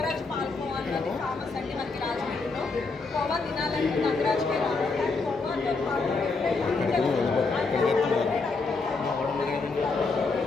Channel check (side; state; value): right; quieter; 4.0 dB